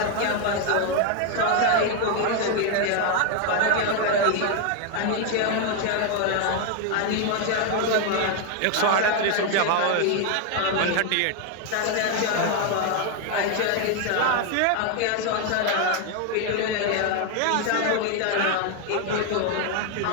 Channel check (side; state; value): both; different; correlation 0.01